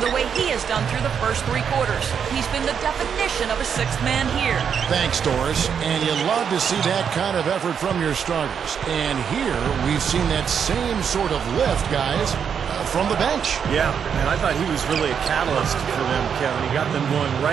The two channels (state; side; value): quieter; left; 7.4 dB